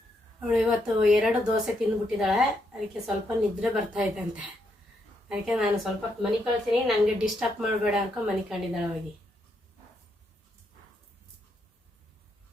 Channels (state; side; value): normal; both; correlation 0.78